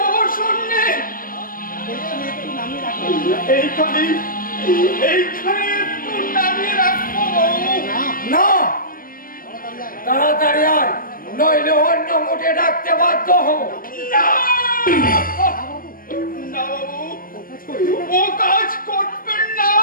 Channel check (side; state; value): right; late; 0.41 ms